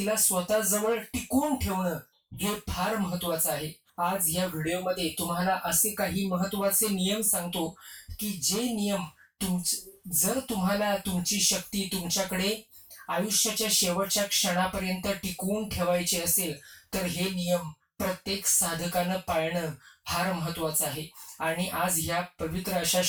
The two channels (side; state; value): both; identical; correlation 1.00